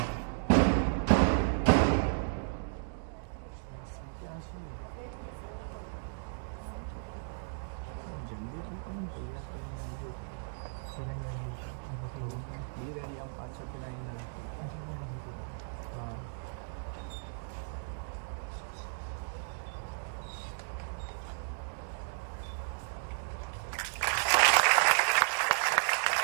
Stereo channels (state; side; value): silent; left; digital silence